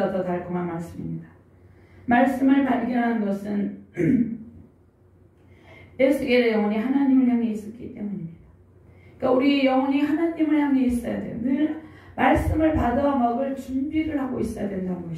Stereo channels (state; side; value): identical; both; correlation 1.00